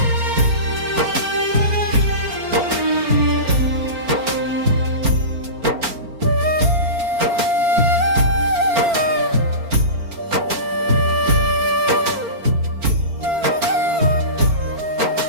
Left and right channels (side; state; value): left; late; 4.4 ms